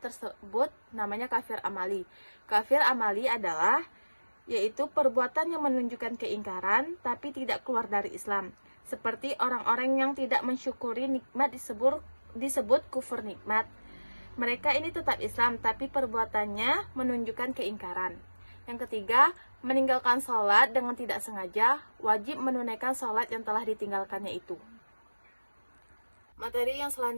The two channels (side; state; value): both; inverted; correlation -1.00